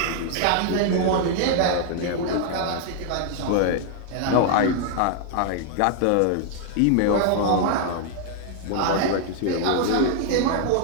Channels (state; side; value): different; both; correlation 0.00